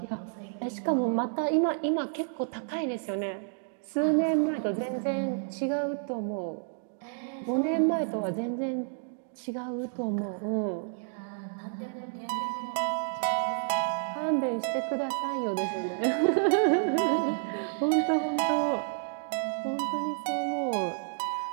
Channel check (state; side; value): silent; left; digital silence